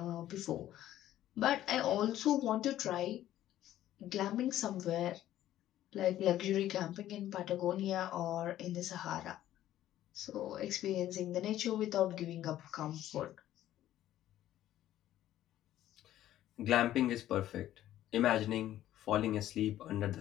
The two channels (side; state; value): right; quieter; 13.0 dB